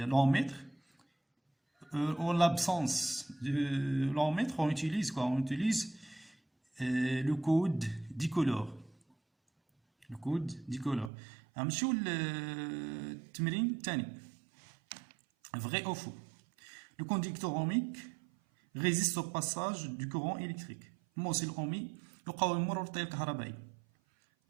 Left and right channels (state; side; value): drops out; left; at 11.1 s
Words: l'ohmmètre. En l'absence de l'ohmmètre, on utilise quoi? On utilise le code dicolore. Le code dicolore. نمشيو للتمرين الثاني. Vrai ou faux? Le conducteur ohmique résiste au passage du courant électrique. الموصل الأومي يقاوم مرور التيار الكهربائي.